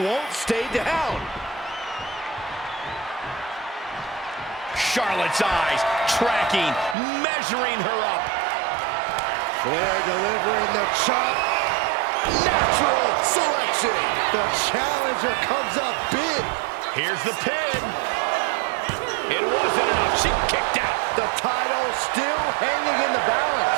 stay down. Charlotte's eyes tracking, measuring her up. Flair delivering the chop. Natural selection. The challenger comes up big. Here's the pin. It wasn't enough. She kicked out. The title still hanging in the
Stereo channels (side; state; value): left; drops out; at 7.0 s